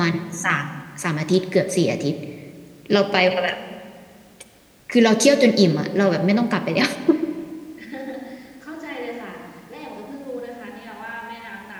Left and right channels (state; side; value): identical; both; correlation 1.00